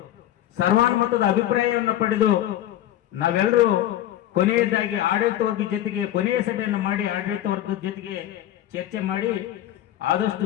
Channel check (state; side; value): quieter; right; 12.7 dB